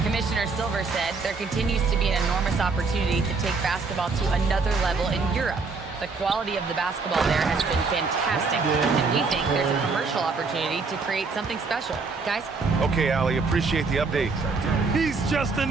Commissioner Silver said there continues to be an enormous opportunity to take basketball to another level in Europe. The quality of the basketball there has been fantastic, and we think there's a commercial opportunity to create something special. Guys? Okay, Allie, appreciate the update. He's just an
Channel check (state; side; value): quieter; left; 4.3 dB